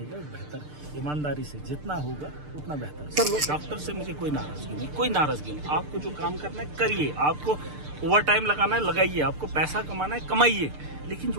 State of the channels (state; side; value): late; left; 6.7 ms